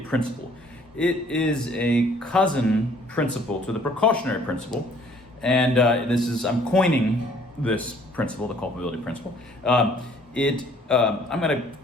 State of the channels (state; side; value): normal; both; correlation 0.59